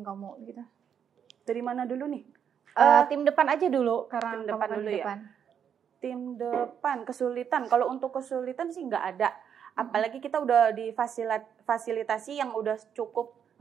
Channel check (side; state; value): left; quieter; 8.1 dB